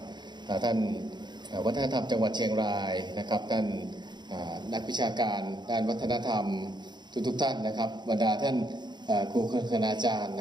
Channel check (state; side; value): late; left; 0.21 ms